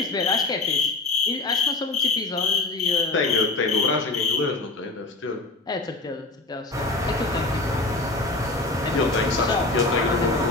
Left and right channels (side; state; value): right; quieter; 3.2 dB